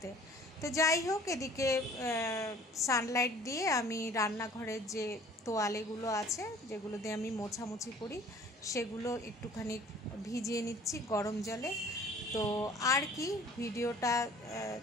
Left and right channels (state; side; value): normal; both; correlation 0.50